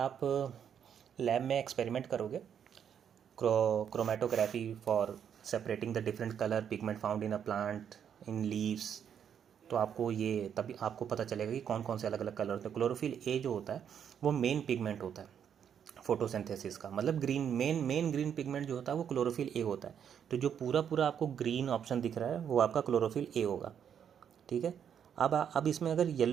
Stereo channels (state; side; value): quieter; left; 8.4 dB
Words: लैब में एक्सपेरिमेंट करोगे, chromatography for separating the different colour pigment found in a plant in leaves, तो आपको ये तभी आपको पता चलेगा कि कौन कौन से अलग अलग कलर होते हैं। क्लोरोफिल ए जो होता है वो मेन पिगमेंट होता है फोटोसिंथेसिस का, मतलब ग्रीन मेन ग्रीन पिगमेंट जो होता है वो क्लोरोफिल ए होता है। तो जो पूरा पूरा आपको ग्रीन ऑप्शन दिख रहा है वो आपका क्लोरोफिल ए होगा, ठीक है। अब इसमें अगर